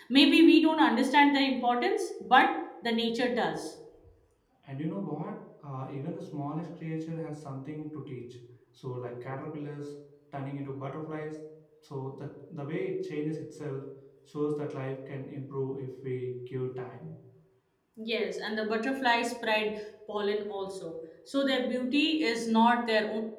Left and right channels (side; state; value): both; identical; correlation 1.00